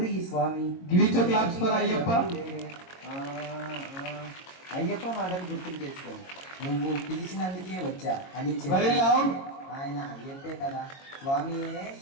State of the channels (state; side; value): late; right; 22 ms